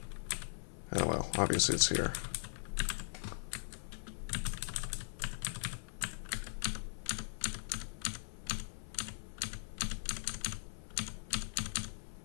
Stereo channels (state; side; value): silent; right; 51 dB below the other